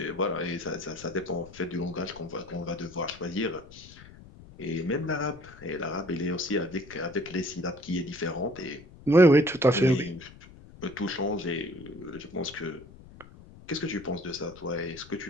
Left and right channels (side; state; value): left; noise; rumble, 19 dB below the sound